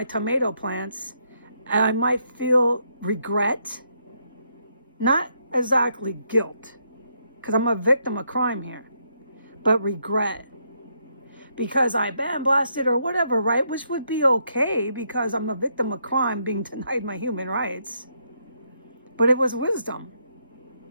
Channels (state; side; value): inverted; both; correlation -0.75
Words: tomato plants, and I might feel regret, not exactly guilt, because I'm a victim of crime here, but regret. Because I bandblasted or whatever, right? Which would be okay because I'm a victim of crime being denied my human rights. But it was wisdom.